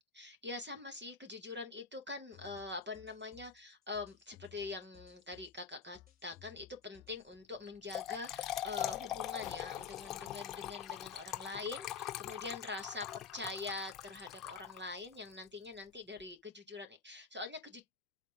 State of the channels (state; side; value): quieter; right; 5.4 dB